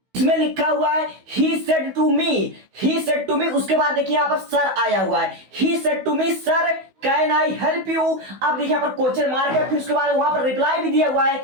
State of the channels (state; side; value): late; left; 16 ms